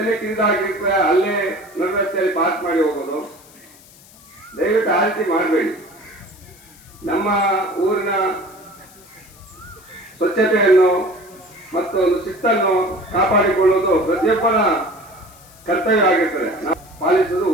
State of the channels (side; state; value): left; noise; hiss, 24 dB below the sound